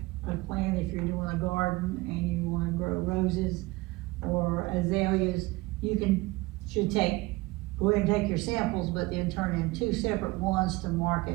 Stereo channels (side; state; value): left; quieter; 21.6 dB